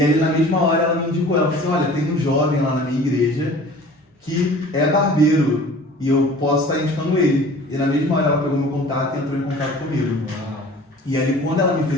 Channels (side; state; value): both; normal; correlation 0.45